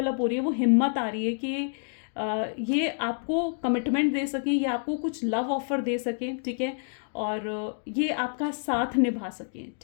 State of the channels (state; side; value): silent; right; digital silence